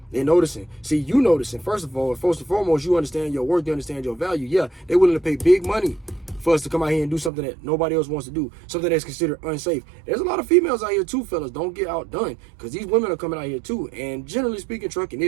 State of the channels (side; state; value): left; drops out; at 7.3 s